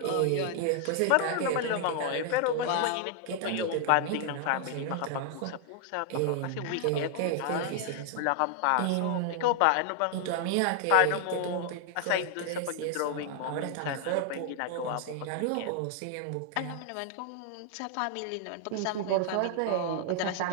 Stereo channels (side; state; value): both; different; correlation 0.00